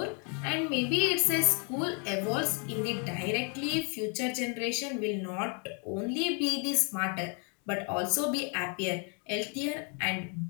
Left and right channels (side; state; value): right; quieter; 38.2 dB